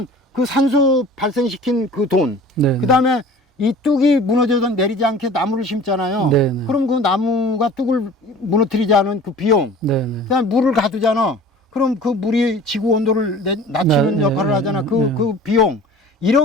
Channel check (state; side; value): normal; both; correlation 0.44